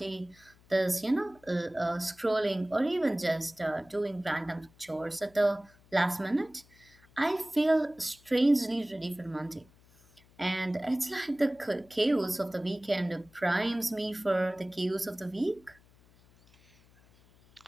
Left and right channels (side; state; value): left; noise; hum, 28 dB below the sound